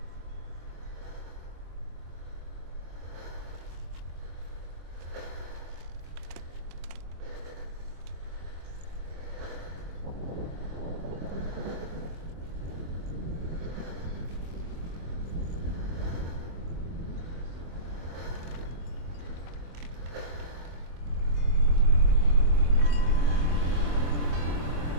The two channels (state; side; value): late; left; 24 ms